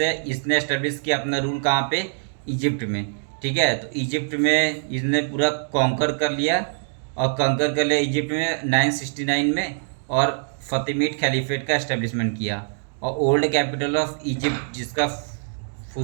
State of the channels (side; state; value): left; silent; digital silence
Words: इसने एस्टेब्लिश किया अपना रूल कहाँ पे, इजिप्ट में। ठीक है, तो इजिप्ट में इसने पूरा कॉन्कर कर लिया, और कॉन्कर कर लिया इजिप्ट में 969 में, और फतिमिड खलीफेट का एस्टेब्लिशमेंट किया। और ओल्ड कैपिटल ऑफ इजिप्ट, जिसका